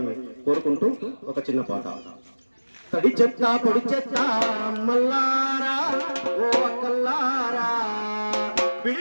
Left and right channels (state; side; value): inverted; both; correlation -1.00